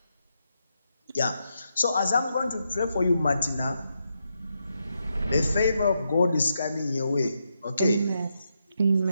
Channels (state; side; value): inverted; both; correlation -0.83